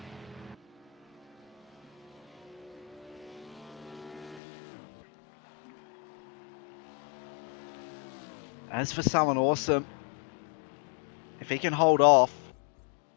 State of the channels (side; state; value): right; drops out; at 4.4 s